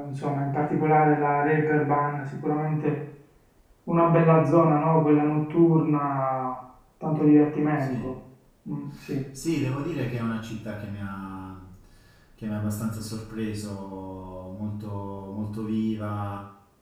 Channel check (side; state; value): both; identical; correlation 1.00